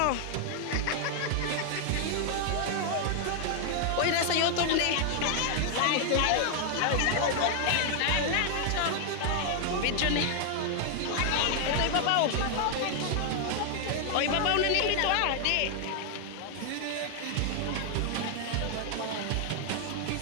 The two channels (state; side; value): different; both; correlation 0.00